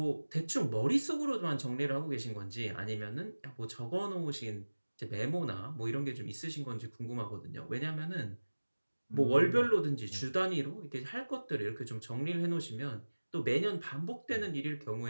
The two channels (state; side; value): inverted; both; correlation -1.00